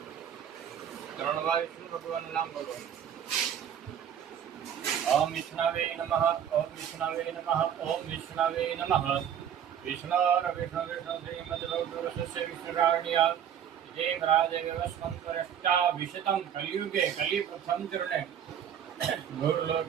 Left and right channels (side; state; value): left; quieter; 9.1 dB